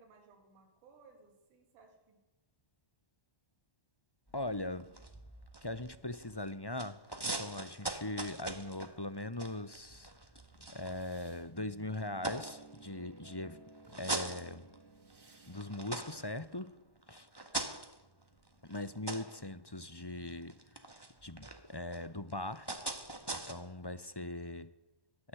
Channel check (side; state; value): right; late; 1.1 ms